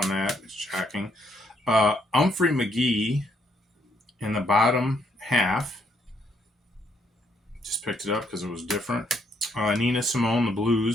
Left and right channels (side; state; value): both; normal; correlation 0.72